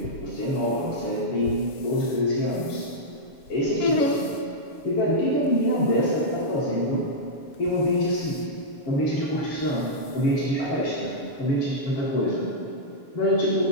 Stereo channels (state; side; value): late; right; 7.1 ms